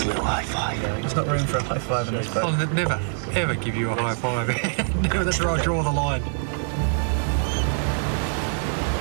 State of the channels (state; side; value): silent; left; digital silence